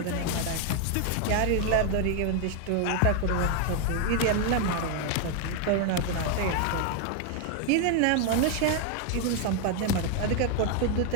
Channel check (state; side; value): different; both; correlation 0.01